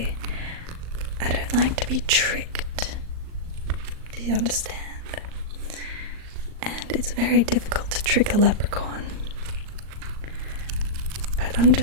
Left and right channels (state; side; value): late; left; 38 ms